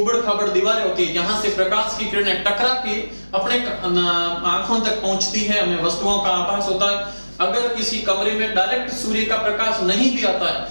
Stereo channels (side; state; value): both; inverted; correlation -1.00